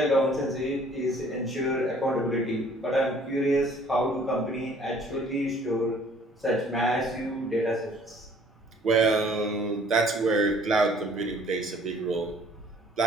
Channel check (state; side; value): normal; both; correlation 0.56